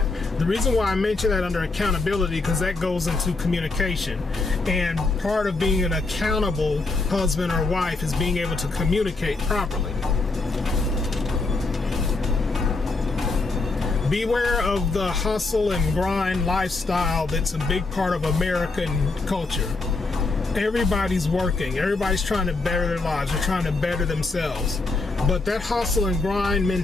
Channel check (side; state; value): right; quieter; 3.6 dB